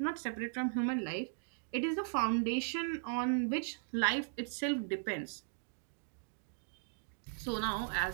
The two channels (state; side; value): silent; left; digital silence